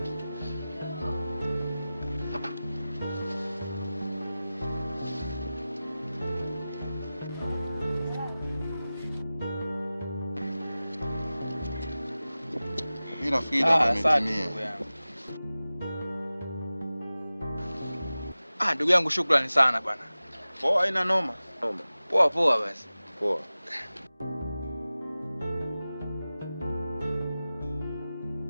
Mimi nafikiri umetimia. Ndugu yangu, shukrani sana bwana. Poa, haina noma. Poa basi. Poa.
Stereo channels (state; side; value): inverted; both; correlation -0.96